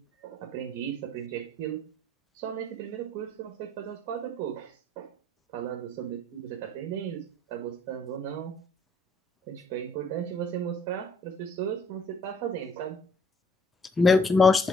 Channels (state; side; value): normal; both; correlation 0.61